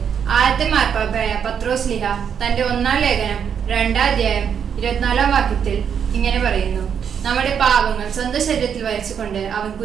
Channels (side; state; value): left; quieter; 7.7 dB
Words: ആദ്യത്തെ മാർപ്പാപ്പയായ പത്രോസ് ലീഹ തന്റെ 1-ാം ലേഖനം 2-ാം അധ്യായം 24-ാം വാക്യത്തിൽ ഇങ്ങനെ പറയുന്നു: നമ്മുടെ പാപങ്ങൾ സ്വന്തം ശരീരത്തിൽ വഹിച്ചുകൊണ്ട് അവൻ